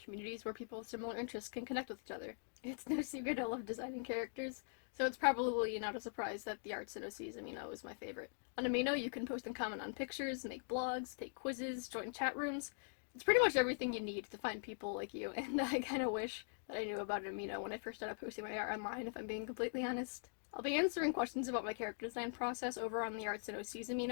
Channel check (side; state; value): right; silent; digital silence